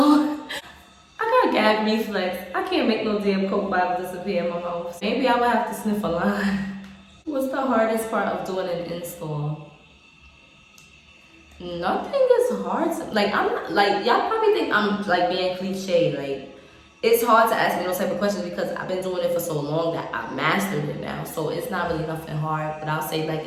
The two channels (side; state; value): both; identical; correlation 1.00